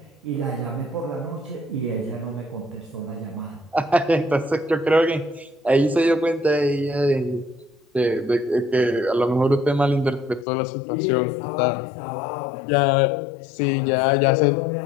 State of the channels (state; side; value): drops out; right; at 10.5 s